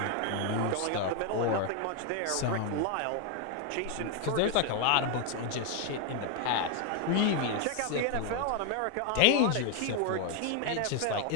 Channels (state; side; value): different; both; correlation 0.01